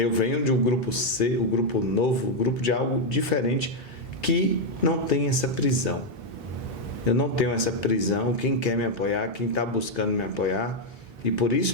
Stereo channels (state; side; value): normal; both; correlation 0.01